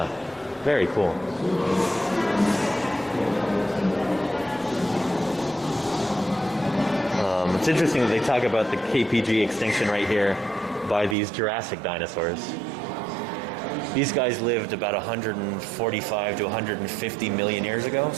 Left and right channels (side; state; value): left; drops out; at 11.2 s